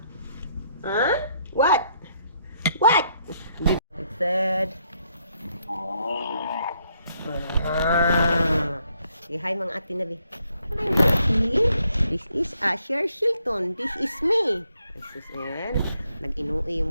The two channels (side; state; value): both; inverted; correlation -0.73